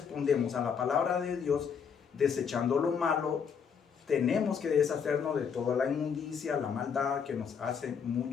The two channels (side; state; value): right; quieter; 6.8 dB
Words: a la palabra de Dios desechando lo malo. Tenemos que deshacernos de toda la inmundicia, la maldad que nos hace